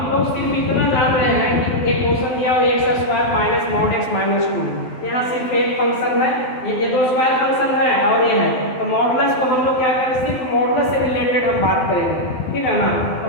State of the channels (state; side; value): late; right; 12 ms